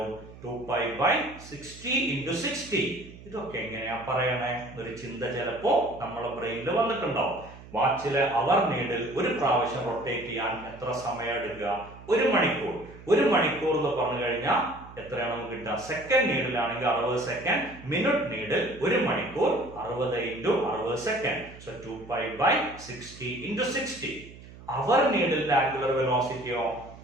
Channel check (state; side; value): noise; right; hum, 18 dB below the sound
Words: 2π/60 × 60. ഇതൊക്കെ എങ്ങനെയാ പറയണേ ഒരു ചിന്ത ചിലപ്പോ നമ്മളെ ബ്രെയിനിൽ വന്നിട്ടുണ്ടാവും. വാച്ചിലെ അവർ നീഡിൽ ഒരു പ്രാവശ്യം റൊട്ടേറ്റ് ചെയ്യാൻ എത്ര സമയം എടുക്കുക? 1 മണിക്കൂർ. 1 മണിക്കൂർ എന്ന് പറഞ്ഞു കഴിഞ്ഞാൽ എത്രയാണ് നമുക്ക് കിട്ടുക? സെക്കൻഡ് നീഡിലാണെങ്കിൽ 60 സെക്കൻഡ്, മിനിറ്റ് നീഡിൽ 1 മണിക്കൂർ 60 × 60 സെക്കൻഡ്. സോ 2π/60 × 60. അവർ നീഡിലിന്റെ ആംഗുലർ വെലോസിറ്റിയോ